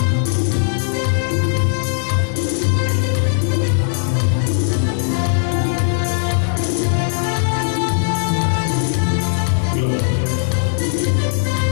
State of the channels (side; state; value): right; silent; digital silence